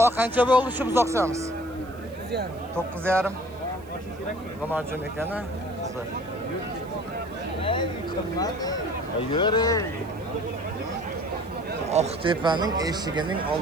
qancha bo'ldi shu buzoqchamiz? 9,5. G'amajin ekan-a. Yuri. Oqtepaning eshigining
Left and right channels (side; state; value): right; noise; hiss, 27 dB below the sound